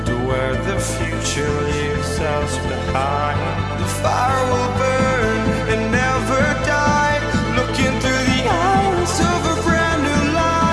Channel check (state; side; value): identical; both; correlation 1.00